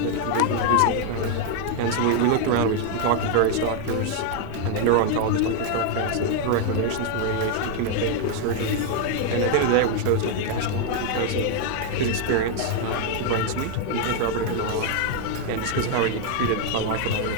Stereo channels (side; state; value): both; different; correlation 0.00